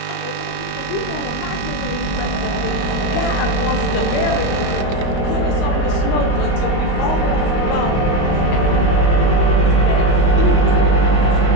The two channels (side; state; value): right; late; 25 ms